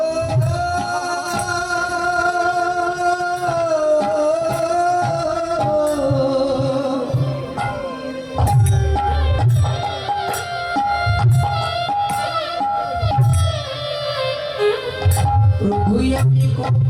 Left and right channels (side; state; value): both; identical; correlation 1.00